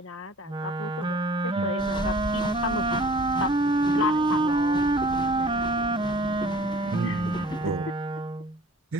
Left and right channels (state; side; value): normal; both; correlation 0.48